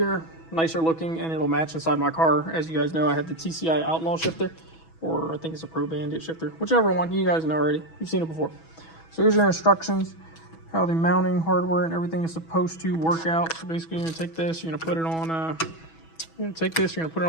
nicer looking, and it'll match inside my car. As you guys know, I have the TCI Outlaw shifter, or I think it's a Pro Bandit shifter, whichever one. You guys know already. You've seen it before. So here's your instructions, how the mounting hardware and everything is supposed to work out. So basically, you're gonna take this, you're gonna put it on. You're gonna take this, you're gonna put it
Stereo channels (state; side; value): late; right; 6.1 ms